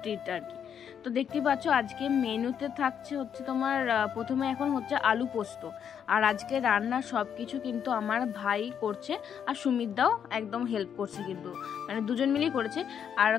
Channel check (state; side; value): quieter; right; 8.2 dB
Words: ট্রিট আর কি। তো দেখতেই পাচ্ছ আজকে মেনুতে থাকছে হচ্ছে তোমার প্রথমে এখন হচ্ছে আলু পোস্ত। আর আজকে রান্না সব কিছু কিন্তু আমার ভাই করছে, আর সুমিতদাও একদম হেল্প করছে, কিন্তু মানে দুজন মিলেই করেছে। আর